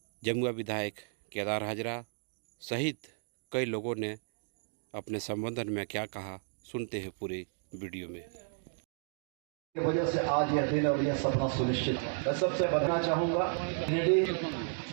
जमुआ विधायक केदार हाजरा सहित कई लोगों ने अपने संबोधन में क्या कहा, सुनते हैं पूरे वीडियो में। वजह से आज यह दिन और यह सपना सुनिश्चित। मैं सबसे बताना चाहूँगा, गिरिडीह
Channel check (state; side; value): silent; left; 55 dB below the other